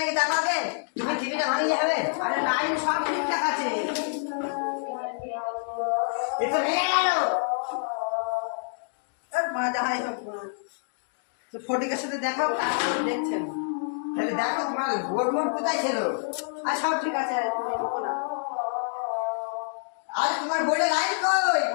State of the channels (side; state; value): right; silent; digital silence